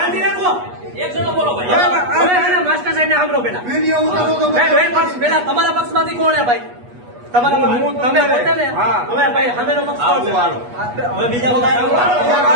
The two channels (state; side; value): late; left; 8.3 ms